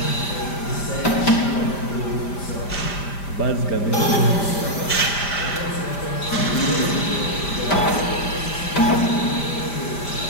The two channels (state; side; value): late; right; 5.1 ms